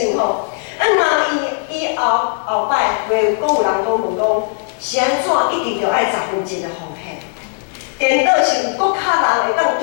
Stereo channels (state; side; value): silent; right; 66 dB below the other